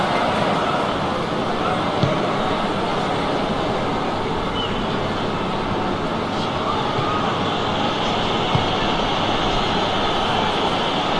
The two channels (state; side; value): identical; both; correlation 1.00